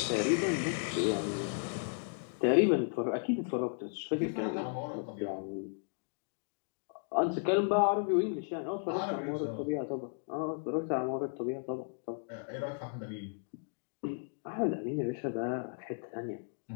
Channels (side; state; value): right; silent; digital silence